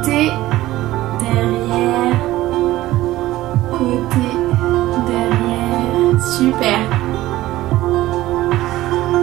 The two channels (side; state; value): left; quieter; 16.2 dB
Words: derrière, côté, derrière. Super.